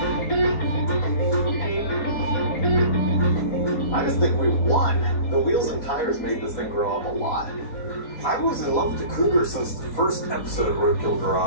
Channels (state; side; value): late; right; 4.2 ms